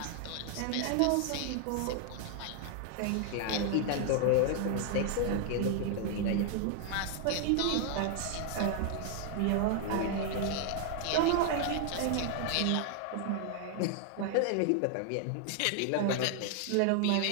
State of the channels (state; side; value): different; both; correlation 0.00